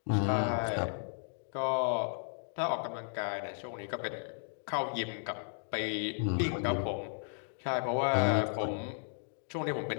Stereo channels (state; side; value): silent; right; digital silence